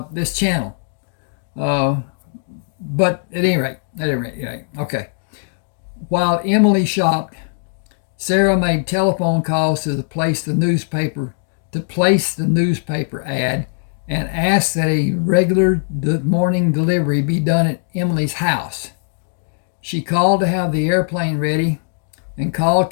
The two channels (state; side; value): silent; right; digital silence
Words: this channel. But at any rate, okay. While Emilee shopped, Sarah made telephone calls to place the newspaper ad and asked that a regular morning delivery be done at Emilee's house. She called to have the airplane ready and called